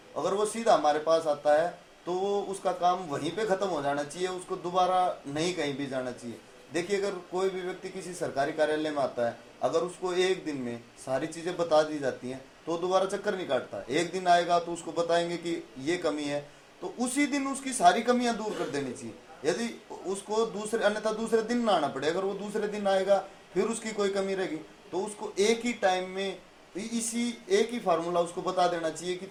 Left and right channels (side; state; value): both; identical; correlation 1.00